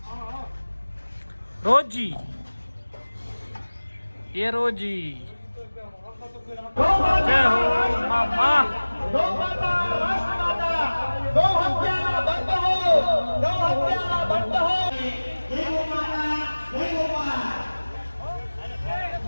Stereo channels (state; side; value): inverted; both; correlation -1.00